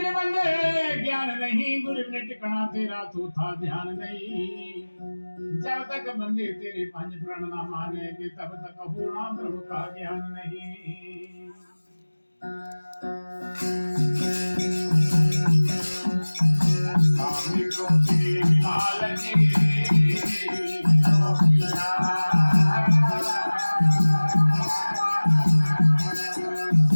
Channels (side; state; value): both; inverted; correlation -1.00